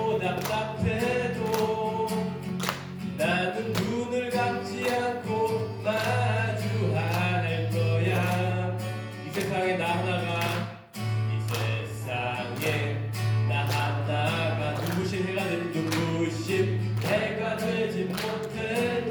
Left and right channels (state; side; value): identical; both; correlation 1.00